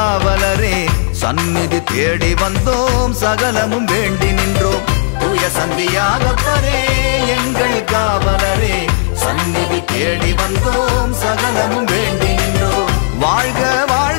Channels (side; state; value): right; silent; digital silence